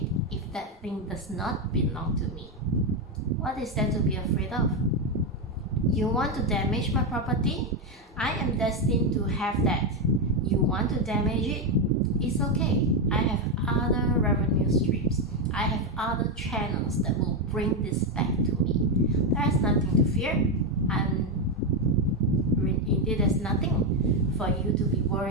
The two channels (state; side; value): normal; both; correlation 0.06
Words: if that thing does not belong to me. What is there to be afraid of? You want to damage my property? I am destined to have that. You want to damage it? It's okay. I have other revenue streams. I have other channels that will bring this back to me. There is nothing to fear, and indeed there's nothing for you to be